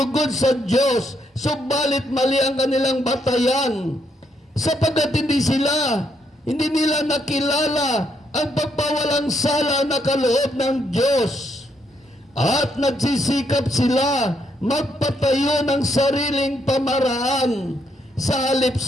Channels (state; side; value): normal; both; correlation 0.75